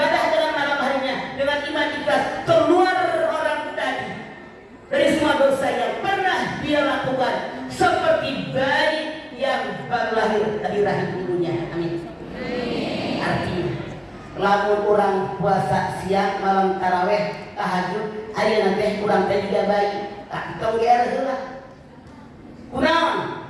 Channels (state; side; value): identical; both; correlation 1.00